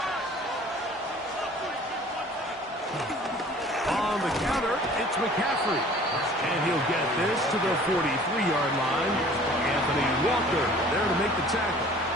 On the counter, it's McCaffrey. And he'll get this to the 43-yard line. Anthony Walker there to make the tackle.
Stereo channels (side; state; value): both; normal; correlation 0.49